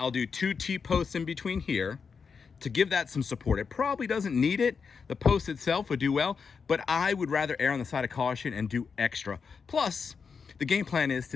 do 2 T-posts in between here to give that some support. It probably doesn't need it. The post itself would do well, but I would rather err on the side of caution and do extra. Plus, the game plan is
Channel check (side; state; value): right; quieter; 5.7 dB